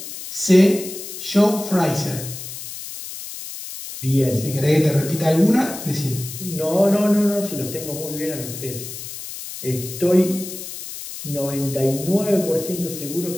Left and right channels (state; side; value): noise; left; hiss, 10 dB below the sound